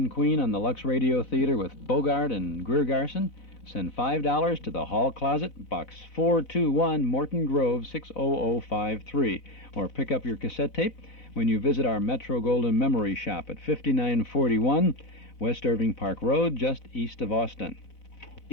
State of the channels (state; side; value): late; right; 4.0 ms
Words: Queen on the Lux Radio Theater with Bogart and Greer Garson, send $5 to the Hall Closet, Box 421, Morton Grove, 60053. Or pick up your cassette tape when you visit our Metro Golden Memory Shop at 5941 West Irving Park Road, just east of Austin.